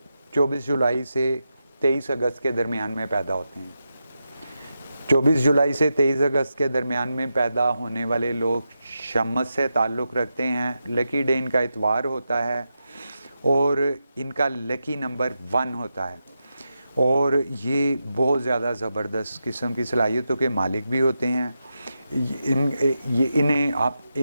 24 جولائی سے 23 اگست کے درمیان میں پیدا ہوتے ہیں۔ 24 جولائی سے 23 اگست کے درمیان میں پیدا ہونے والے لوگ شمس سے تعلق رکھتے ہیں۔ لکی ڈے ان کا اتوار ہوتا ہے اور ان کا لکی نمبر 1 ہوتا ہے، اور یہ بہت زیادہ زبردست قسم کی صلاحیتوں کے مالک بھی ہوتے ہیں۔ انہیں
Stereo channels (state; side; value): inverted; both; correlation -0.88